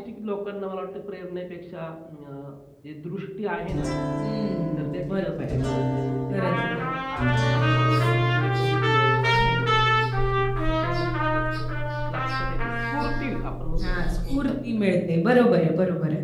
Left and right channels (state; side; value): identical; both; correlation 1.00